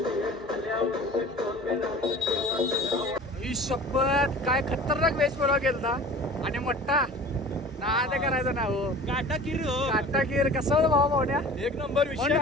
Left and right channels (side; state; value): both; normal; correlation 0.41